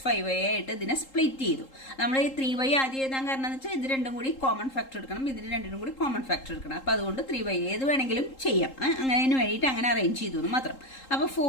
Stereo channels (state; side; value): late; right; 3.8 ms